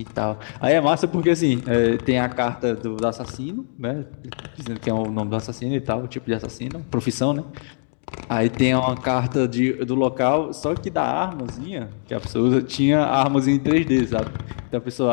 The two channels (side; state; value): right; silent; digital silence